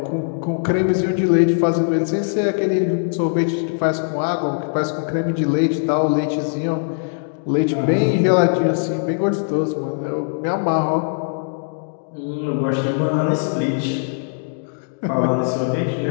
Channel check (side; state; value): right; silent; digital silence